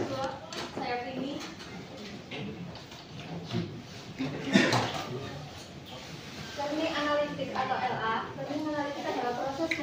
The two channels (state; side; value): identical; both; correlation 1.00